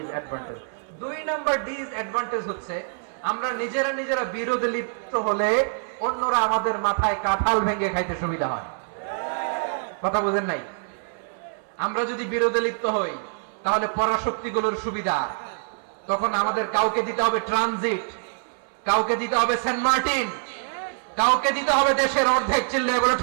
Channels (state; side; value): silent; left; 62 dB below the other